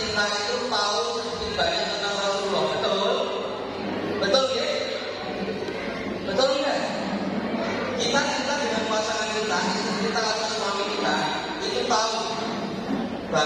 itu tahu sedikit banyak tentang Rasulullah, betul? Betul ya? Betul enggak? Kita cinta dengan pasangan kita, istri kita atau suami kita, itu tahu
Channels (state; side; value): identical; both; correlation 1.00